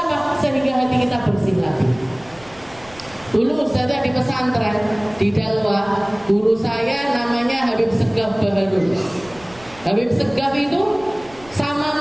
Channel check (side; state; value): right; noise; rumble, 23 dB below the sound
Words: Sehingga hati kita bersih lagi. Dulu saya di pesantren di Dalwa, guru saya namanya Habib Segaf Baharul. Habib Segaf itu